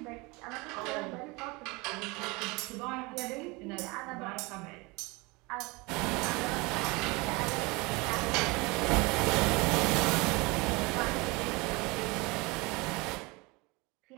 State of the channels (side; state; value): left; quieter; 25.3 dB